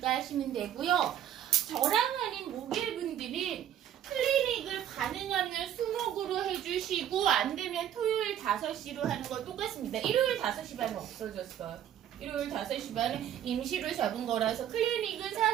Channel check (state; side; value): quieter; left; 10.6 dB